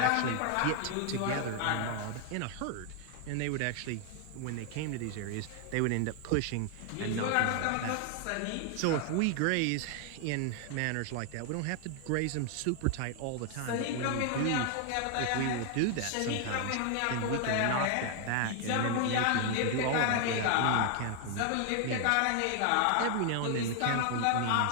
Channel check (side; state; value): both; different; correlation 0.00